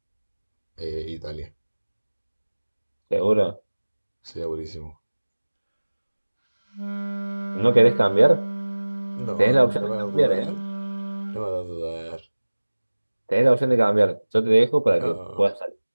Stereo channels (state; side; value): inverted; both; correlation -1.00